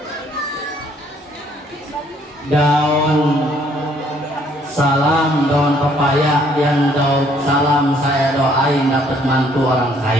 Daun salam, daun pepaya, yang daun salam saya doain dapat mantu orang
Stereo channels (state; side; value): normal; both; correlation 0.64